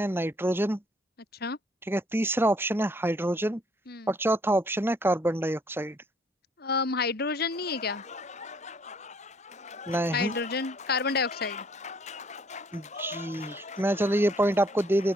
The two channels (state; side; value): normal; both; correlation 0.63